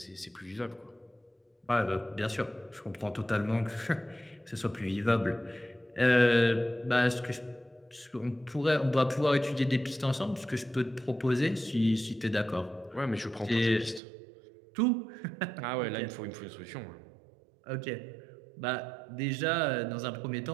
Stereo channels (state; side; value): drops out; left; at 14.0 s